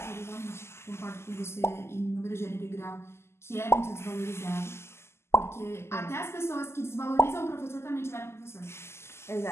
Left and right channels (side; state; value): right; late; 0.12 ms